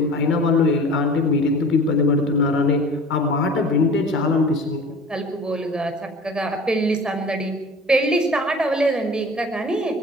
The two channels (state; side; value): normal; both; correlation 0.41